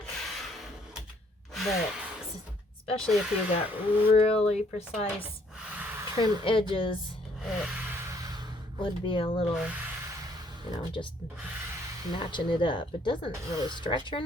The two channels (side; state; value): both; normal; correlation 0.65